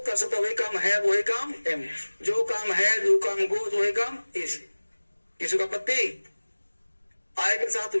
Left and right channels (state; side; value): inverted; both; correlation -1.00